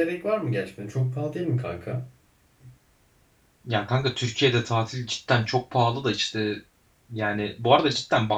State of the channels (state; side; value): identical; both; correlation 1.00